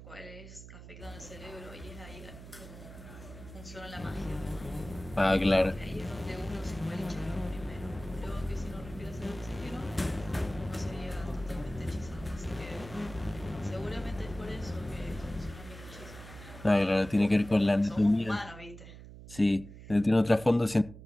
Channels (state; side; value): noise; right; hum, 15 dB below the sound